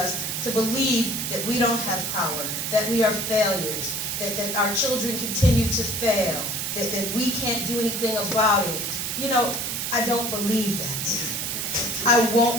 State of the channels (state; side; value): noise; right; hiss, 2 dB below the sound